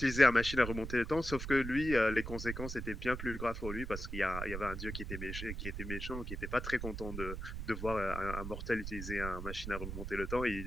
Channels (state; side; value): noise; right; rumble, 6 dB below the sound